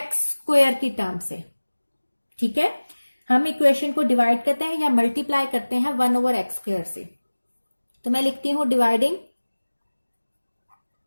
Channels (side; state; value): both; inverted; correlation -1.00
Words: स्क्वायर की टर्म से। ठीक है, हम इक्वेशन को डिवाइड करते हैं या मल्टीप्लाई करते हैं 1/x स्क्वायर से। तो मैं लिखती हूं dividing